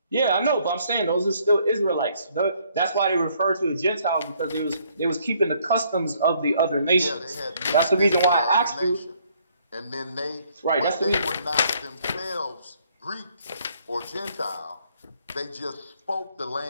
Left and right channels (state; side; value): inverted; both; correlation -0.66